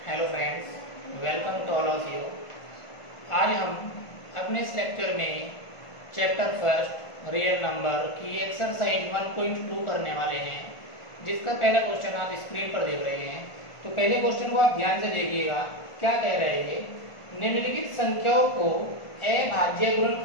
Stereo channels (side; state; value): right; late; 1.5 ms